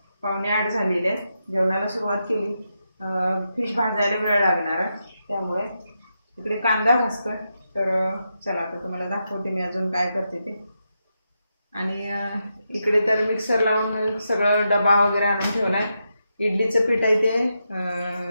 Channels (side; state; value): both; inverted; correlation -0.85